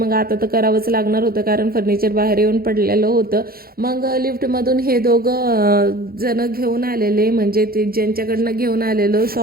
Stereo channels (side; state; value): left; late; 0.44 ms